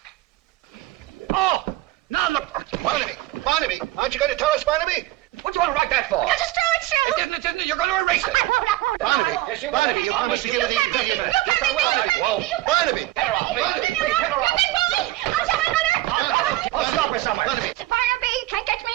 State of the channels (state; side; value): quieter; left; 16.7 dB